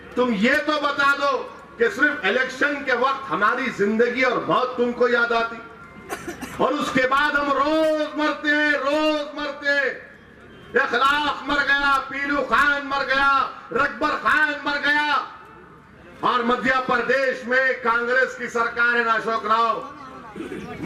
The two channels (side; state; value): both; identical; correlation 1.00